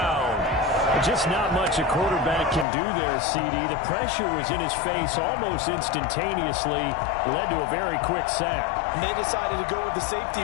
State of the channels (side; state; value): right; drops out; at 2.7 s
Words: Just not much a quarterback can do there, CD. The pressure was in his face almost instantaneously, led to a very quick sack. And they decided to go with the safety